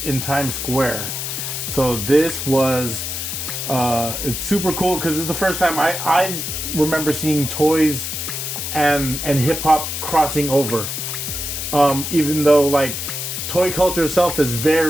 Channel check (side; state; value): left; noise; hiss, 4 dB below the sound